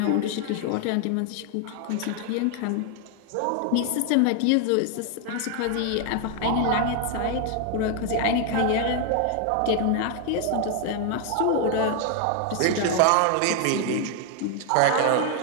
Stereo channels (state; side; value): different; both; correlation 0.00